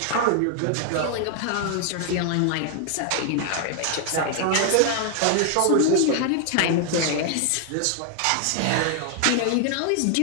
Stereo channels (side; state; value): both; different; correlation 0.00